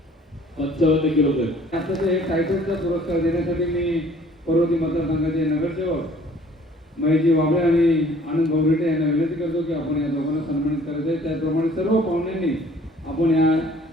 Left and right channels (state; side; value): normal; both; correlation 0.55